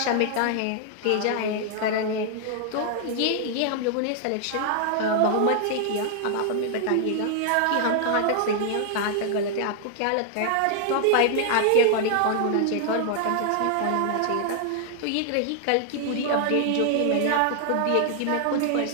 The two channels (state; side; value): different; both; correlation 0.00